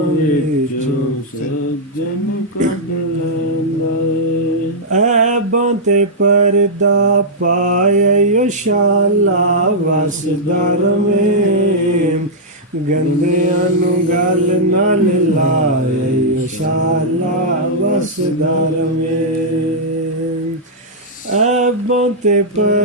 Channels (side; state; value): both; normal; correlation -0.07